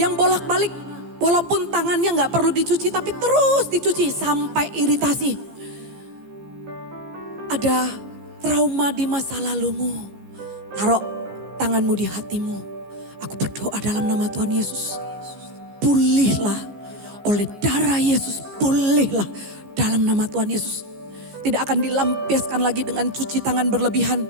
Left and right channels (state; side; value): late; left; 15 ms